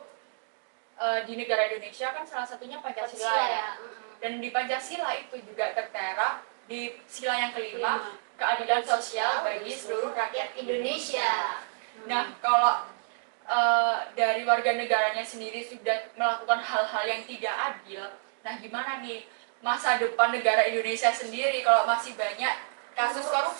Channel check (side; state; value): left; silent; digital silence